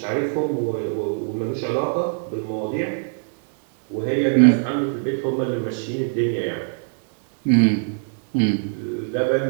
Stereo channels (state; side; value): silent; left; digital silence